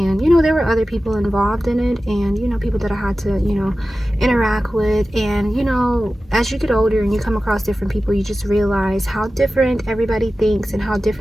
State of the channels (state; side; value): normal; both; correlation 0.95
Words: you know, there were other people involved in it, and, you know, people that I had to, you know, interact with. And, you know, as you get older and you come across different people, you just realize how different everybody thinks and how